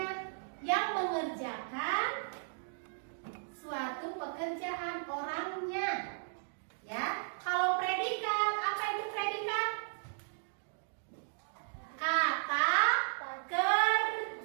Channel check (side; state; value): left; silent; digital silence